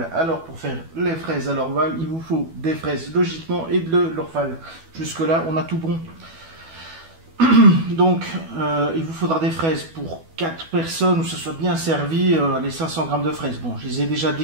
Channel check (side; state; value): left; late; 12 ms